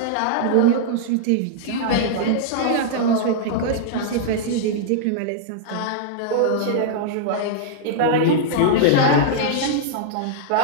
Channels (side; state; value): both; different; correlation -0.01